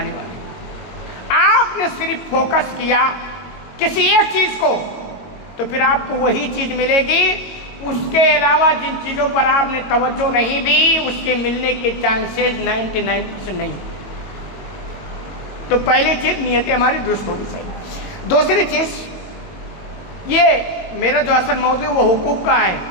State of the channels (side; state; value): right; late; 22 ms